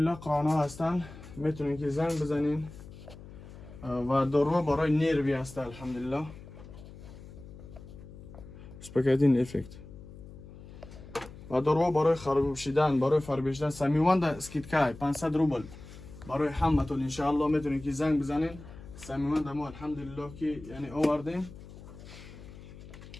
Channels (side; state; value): left; noise; hum, 16 dB below the sound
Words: قرآن ها هستن. میتونین که زنگ بزنین و دارو برای نروی است الحمدلله. سپکتین افکت و دارو برای خراب شدن، برای فربشتن سمیوند اسکیتکای 500 روبل برای همتون انشاءالله میتونید که زنگ بزنین. سمیوند ما الحمدلله که یعنی آوردیم